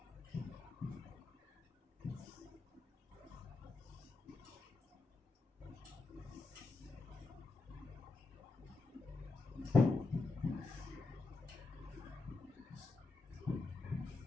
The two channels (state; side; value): quieter; right; 3.7 dB